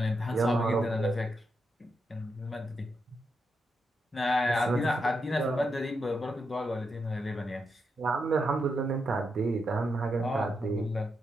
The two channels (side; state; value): both; normal; correlation 0.84